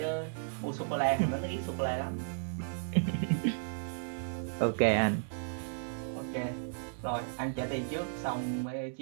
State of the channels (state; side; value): silent; left; digital silence